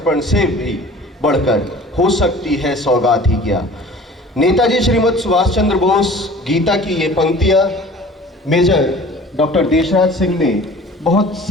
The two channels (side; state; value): both; normal; correlation 0.45